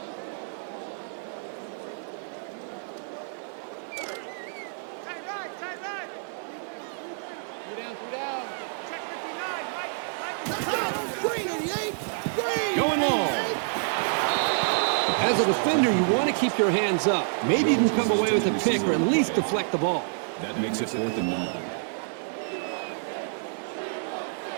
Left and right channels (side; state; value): left; silent; 59 dB below the other